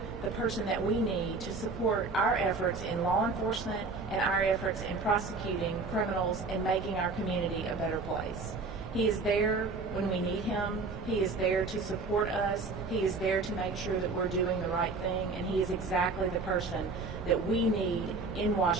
the person that we need to support our efforts in law enforcement and our efforts in prosecuting criminals and making our community a better place. He is there when we need him. He is there to support us. He is there to make sure that we're doing the right thing, and he is exactly the person that we need in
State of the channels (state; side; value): quieter; left; 3.9 dB